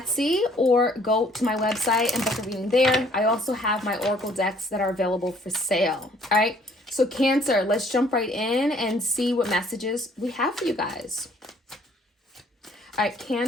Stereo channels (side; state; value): both; normal; correlation 0.60